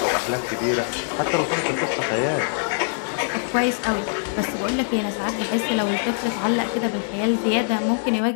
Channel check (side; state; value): right; silent; digital silence